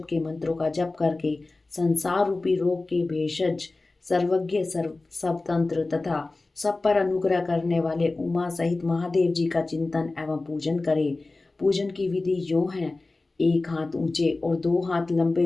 के मंत्रों का जप करके संसार रूपी रोग के भेषज सर्वज्ञ स्वतंत्र तथा सब पर अनुग्रह करने वाले उमा सहित महादेव जी का चिंतन एवं पूजन करें। पूजन की विधि यूं है: 1 हाथ ऊंचे और 2 हाथ लंबे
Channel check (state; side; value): quieter; right; 3.3 dB